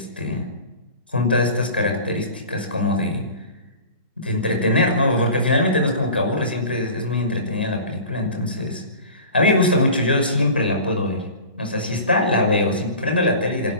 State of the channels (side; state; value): both; inverted; correlation -0.39